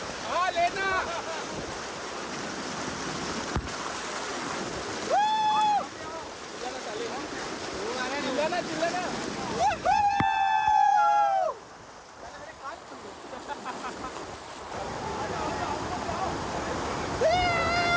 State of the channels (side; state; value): both; identical; correlation 1.00